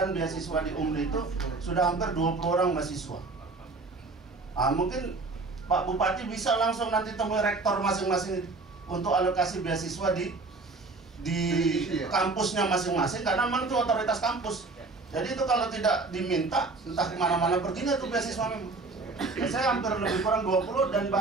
beasiswa di UMRI itu sudah hampir 20 orang mahasiswa. Mungkin Pak Bupati bisa langsung nanti temui rektor masing-masing untuk alokasi beasiswa di kampusnya masing-masing, karena memang itu otoritas kampus. Jadi itu kalau tidak diminta, entah kemana-mana perginya tuh beasiswa memang. Saya hampir lebih kurang 20 dan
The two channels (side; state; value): left; quieter; 3.7 dB